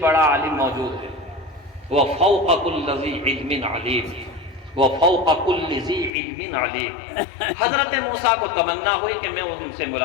عالم موجود ہے، وَفَوْقَ كُلِّ ذِي عِلْمٍ عَلِيمٍ، وَفَوْقَ كُلِّ ذِي عِلْمٍ عَلِيمٍ۔ حضرت موسیٰ کو تمنا ہوئی کہ میں ان سے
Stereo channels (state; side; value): drops out; right; at 6.1 s